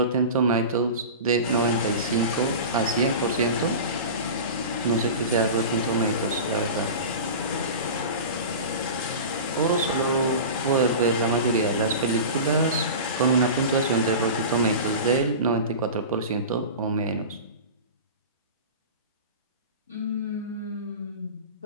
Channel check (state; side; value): inverted; both; correlation -0.31